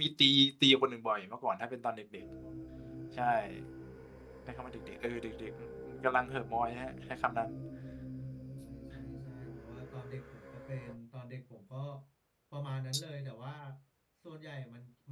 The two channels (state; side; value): identical; both; correlation 1.00